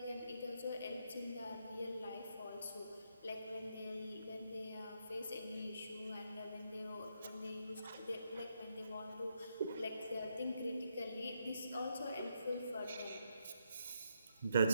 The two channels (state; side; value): inverted; both; correlation -0.79